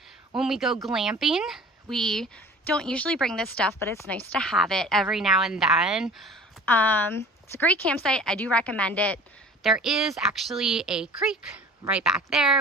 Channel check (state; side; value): normal; both; correlation 0.44